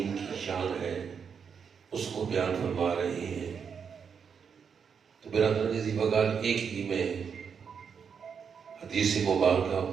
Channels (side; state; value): left; quieter; 6.7 dB